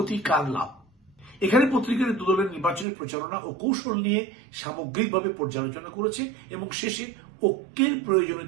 কার লাভ। এখানে পত্রিকার দুদলের নির্বাচনের প্রচারণা ও কৌশল নিয়ে সামগ্রিকভাবে পর্যালোচনা করেছে এবং শেষে ঐক্যের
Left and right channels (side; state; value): left; drops out; at 2.9 s